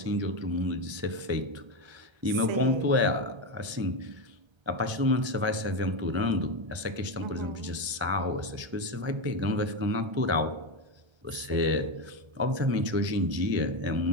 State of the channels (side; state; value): left; late; 1.3 ms